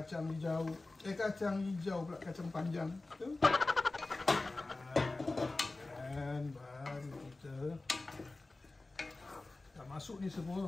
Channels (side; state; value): right; quieter; 3.2 dB